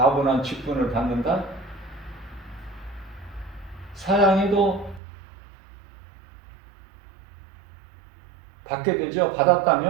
직분을 받는다? 사양해도 받게 되죠.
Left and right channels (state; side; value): drops out; left; at 5.0 s